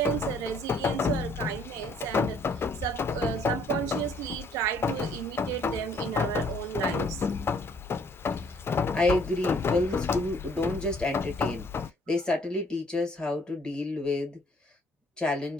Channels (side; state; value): both; normal; correlation 0.62